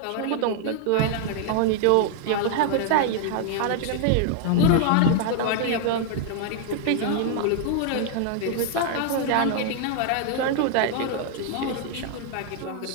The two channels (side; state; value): both; different; correlation -0.01